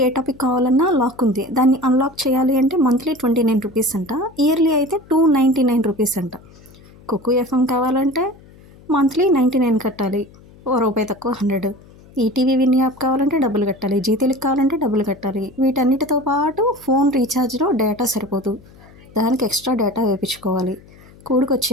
టాపిక్ కావాలన్నా లాక్ ఉంది. దాన్ని అన్‌లాక్ చేయాలి అంటే మంత్లీ ₹29 అంట. ఇయర్లీ అయితే ₹299 అంట. కుక్కు ఎఫ్ఎం కావాలంటే మంత్లీ 99 కట్టాలి. ఓ రూపాయి తక్కువ 100. ఈటీవీ విన్ యాప్ కావాలంటే డబ్బులు కట్టాలి. జీ తెలుగు కావాలంటే డబ్బులు కట్టాలి. వీటన్నిటితో పాటు ఫోన్ రీఛార్జ్‌లో డేటా సరిపోదు. దానికి ఎక్స్ట్రా డేటా వేపించుకోవాలి.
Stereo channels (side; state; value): left; noise; hum, 24 dB below the sound